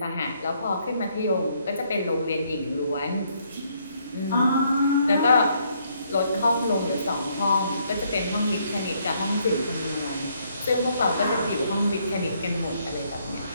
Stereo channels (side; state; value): both; inverted; correlation -0.70